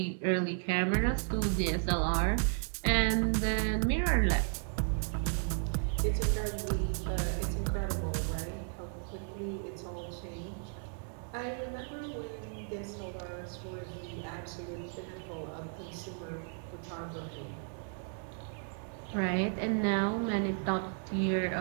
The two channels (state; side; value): silent; left; 55 dB below the other